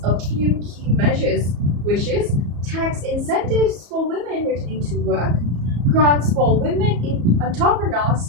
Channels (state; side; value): late; left; 34 ms